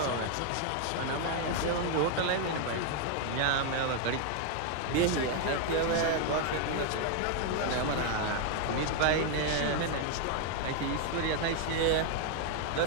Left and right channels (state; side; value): different; both; correlation 0.00